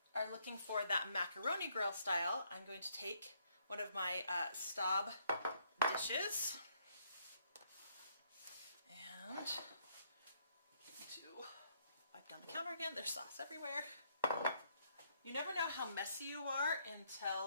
are looking for that macaroni grill style, I'm going to take one of my Staub dishes and to wipe down the counter again. There's sauce everywhere. You never know how messy you are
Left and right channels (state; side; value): inverted; both; correlation -0.70